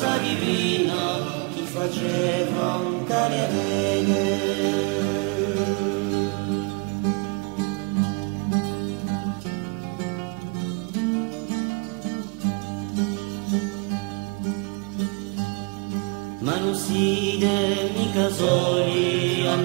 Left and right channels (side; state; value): left; quieter; 31.9 dB